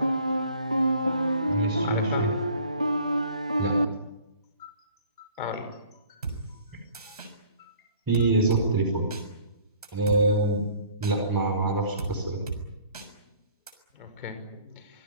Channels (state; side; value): inverted; both; correlation -0.53